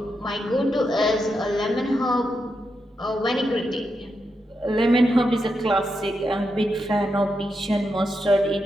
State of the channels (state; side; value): normal; both; correlation 0.85